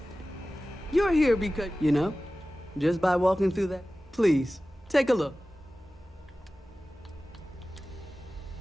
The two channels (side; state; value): both; normal; correlation 0.96